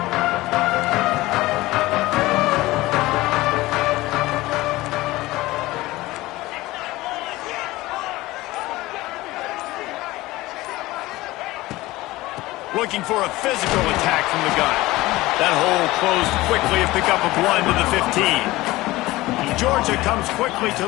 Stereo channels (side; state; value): right; quieter; 18.8 dB